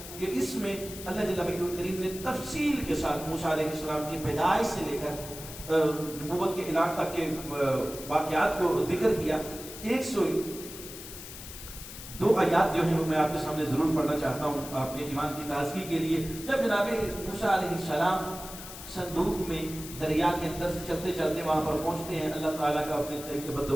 کہ اس میں اللہ جل مجدہ الکریم نے تفصیل کے ساتھ موسیٰ علیہ السلام کی پیدائش سے لے کر نبوت کے اعلان تک کے واقعات کو ذکر کیا. 102 آیات جو ہیں وہ میں آپ کے سامنے ضرور پڑھنا چاہتا ہوں آپ کے ایمان کی تازگی کے لیے. جب جناب موسیٰ علیہ السلام صندوق میں دریا کے اندر سے چلتے چلتے وہاں پر پہنچتے ہیں اللہ تعالیٰ کا اپنے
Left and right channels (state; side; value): noise; left; hiss, 12 dB below the sound